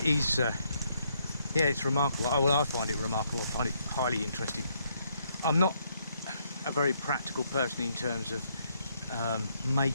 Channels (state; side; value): inverted; both; correlation -0.73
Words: is, yeah, it's remarkable. Well, I find it remarkable. I find it highly interesting. I'm not a very practical person in terms of